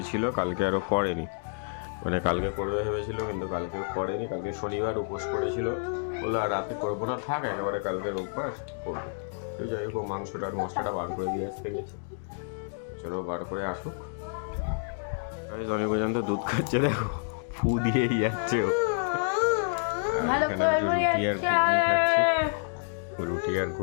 ছিল, কালকে আরও করেনি। মানে কালকে করবে ভেবেছিল, কিন্তু কালকে করেনি। কালকে শনিবার উপোস করেছিল, বলে আর রাতে করবো না, থাক একেবারে কালকে রোববার করবো। তো যাই হোক, মাংসটার মশলাটা বার করে দিয়ে আসতে গেছে। চলো বার করে আসুক। অনিকুজন তো দুধ খাচ্ছে, দেখো ফু দিয়েই যাচ্ছে ও। আর এখানে রুটি আর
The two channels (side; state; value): right; silent; digital silence